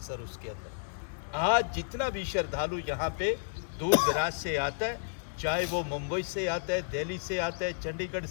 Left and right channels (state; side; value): silent; right; digital silence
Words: सर उसके अंदर। आज जितना भी श्रद्धालु यहाँ पे दूर दराज से आता है, चाहे वो मुंबई से आता है, दिल्ली से आता है, चंडीगढ़